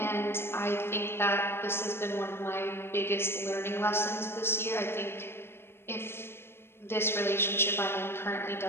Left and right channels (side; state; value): right; late; 0.12 ms